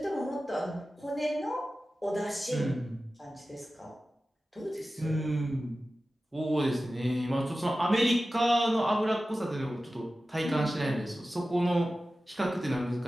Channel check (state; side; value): normal; both; correlation 0.95